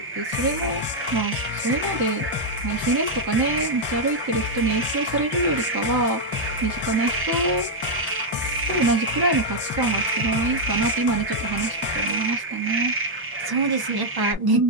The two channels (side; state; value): both; normal; correlation -0.02